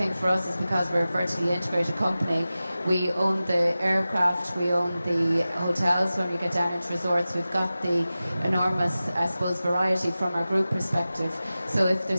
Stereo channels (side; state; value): both; inverted; correlation -0.95